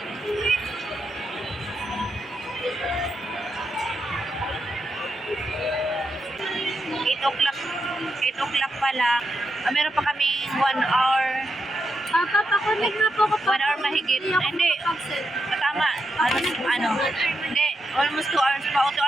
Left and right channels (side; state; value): both; normal; correlation 0.84